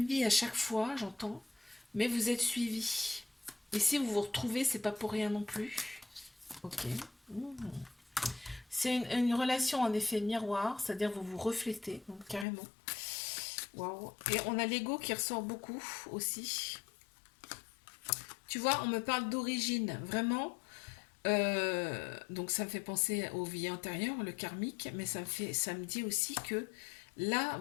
vie à chaque fois, j'entends, mais vous êtes suivis. Et si vous vous retrouvez, c'est pas pour rien non plus. Ok. C'est une relation en effet miroir, c'est-à-dire vous vous reflétez, donc, carrément. Waouh. Et on a l'ego qui ressort beaucoup aussi. Tu vois, on me parle d'origine, vraiment. Donc ça me fait penser aux vies antérieures, le karmique, mais ça me dit aussi que là,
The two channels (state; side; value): drops out; right; at 12.5 s